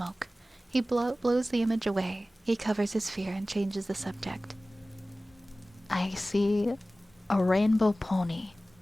He blows the image away. He covers his fear and changes the subject. I see a rainbow pony.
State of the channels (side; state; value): both; normal; correlation 0.97